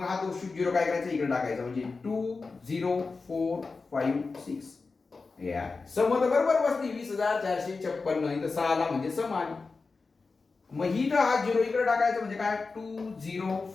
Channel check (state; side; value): quieter; right; 4.2 dB